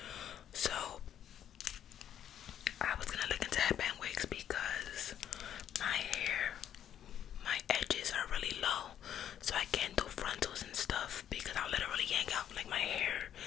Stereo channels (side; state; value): right; quieter; 10.0 dB